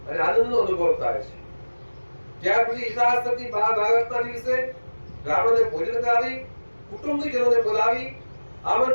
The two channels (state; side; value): inverted; both; correlation -1.00